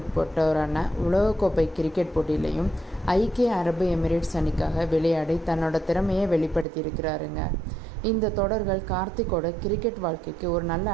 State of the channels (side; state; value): left; drops out; at 6.7 s